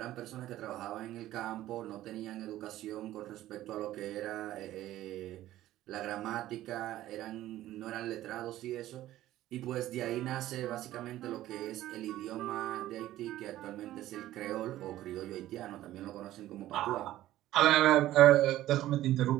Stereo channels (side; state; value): left; quieter; 14.4 dB